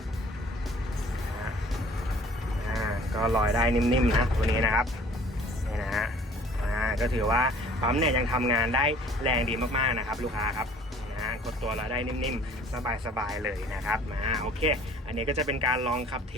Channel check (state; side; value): normal; both; correlation 0.52